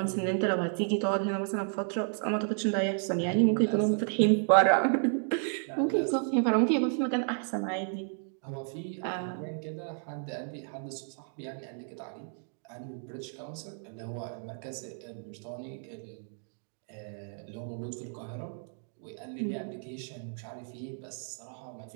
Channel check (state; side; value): silent; left; 56 dB below the other